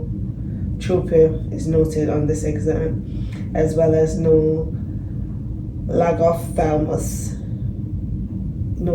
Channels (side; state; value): both; identical; correlation 1.00